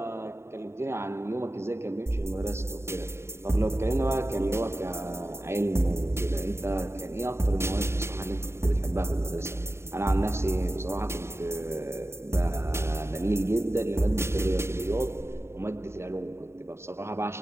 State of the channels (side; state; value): left; late; 0.13 ms